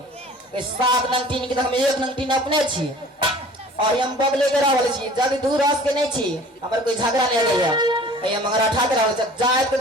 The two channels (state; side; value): normal; both; correlation 0.47